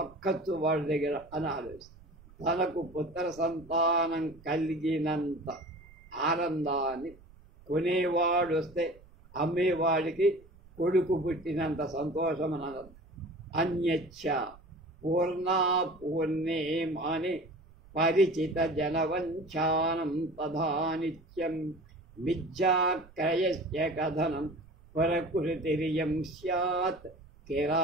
వాడి దగ్గర అని ఆలోచిస్తాడు. తనకు పుత్ర సంతానం కలిగినంత ఆనందాన్ని కొనేవాడు వస్తే అమ్మేవాడికి కొడుకు పుట్టినంత సంతోషం అని అనంత. అన్యచ్చ పూర్ణా పూర్ణే మాని పరిచిత జనవంచానం తథా నిత్యం మిథ్యాక్రయస్య కథనం ప్రకృతిరియం స్యాత్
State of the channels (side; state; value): right; noise; rumble, 24 dB below the sound